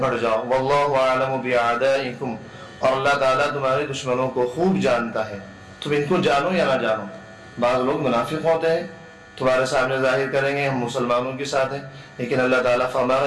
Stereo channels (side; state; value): both; identical; correlation 1.00